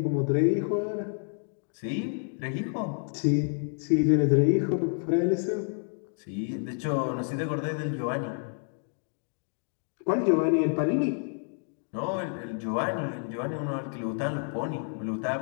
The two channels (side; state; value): right; silent; 56 dB below the other